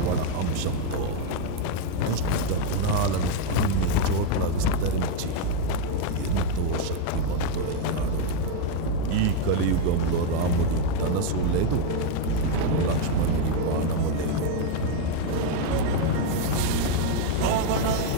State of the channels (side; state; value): both; different; correlation 0.01